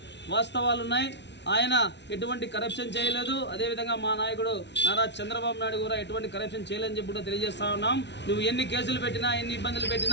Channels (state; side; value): late; right; 0.51 ms